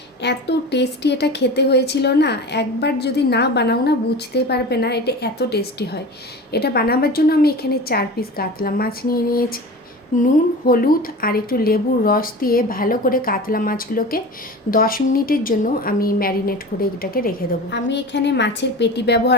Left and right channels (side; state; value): both; normal; correlation 0.33